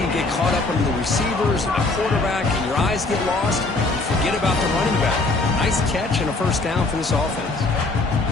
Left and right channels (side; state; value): right; quieter; 3.2 dB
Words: to get caught up under the receivers and the quarterback, and your eyes get lost. You forget about the running back. Nice catch and a first down for this offense.